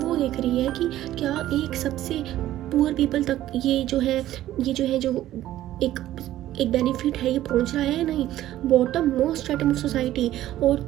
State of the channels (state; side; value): quieter; left; 13.8 dB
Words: देख रही है कि क्या एक सबसे पुअर पीपल तक ये जो है जो एक बेनिफिट है ये पहुंच रहा है या नहीं, bottom most stratum of society और